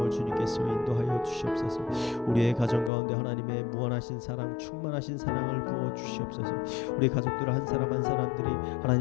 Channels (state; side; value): drops out; right; at 2.9 s